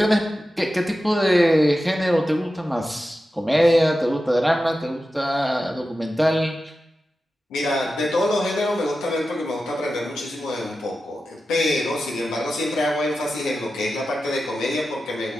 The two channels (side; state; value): both; normal; correlation 0.92